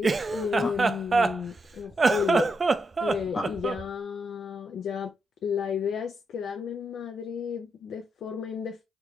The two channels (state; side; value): normal; both; correlation 0.82